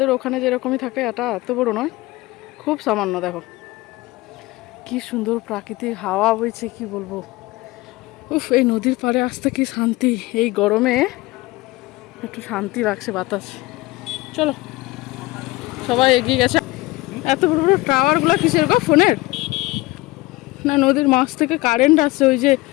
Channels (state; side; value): quieter; right; 20.9 dB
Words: ওখানে যেরকমই থাকে এটা এত বড় নয়, খুব সামান্য। দেখো কি সুন্দর প্রাকৃতিক হাওয়া বইছে, কি বলবো। উফ, এই নদীর পাড়ে আসতে কি শান্তি, এই গরমে একটু শান্তি লাগছে বাতাস। চলো, সবাই এগিয়ে গেছে। এত বড় বড় টাওয়ারগুলো কিসের গো, ফোনের না নদীর মাছ থেকে কারেন্ট আসছে? ওই যে